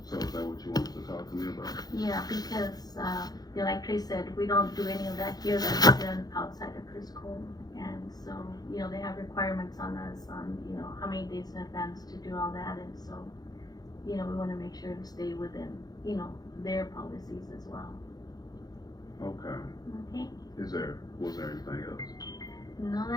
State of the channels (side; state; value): right; late; 0.19 ms